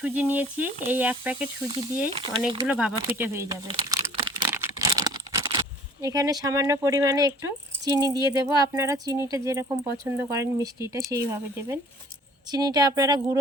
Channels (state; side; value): normal; both; correlation 0.51